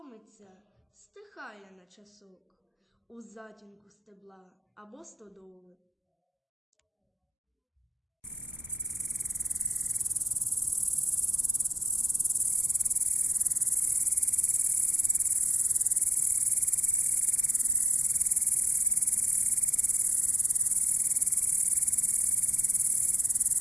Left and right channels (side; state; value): both; normal; correlation 0.87